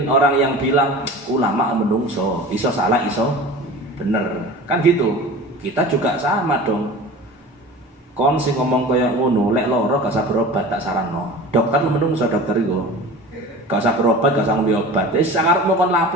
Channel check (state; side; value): normal; both; correlation 0.37